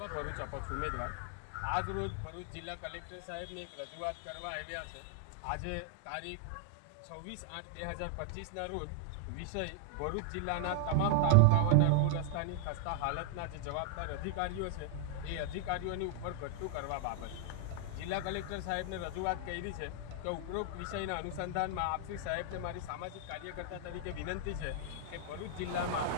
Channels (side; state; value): both; different; correlation 0.00